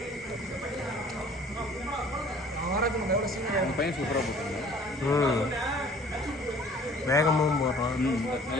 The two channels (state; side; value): normal; both; correlation 0.52